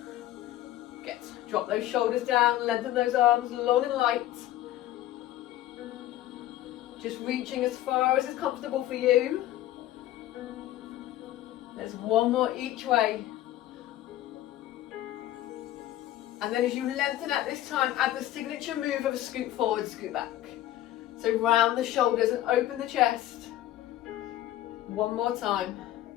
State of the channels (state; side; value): quieter; right; 13.8 dB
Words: Good. Drop those shoulders down, lengthen those arms long and light. Just reaching as far as is comfortable for you. There's 1 more each way. And then as you lengthen at this time, add the signature move of a scoot forward, scoot back. So round the shoulders and open the chest. 1 more time.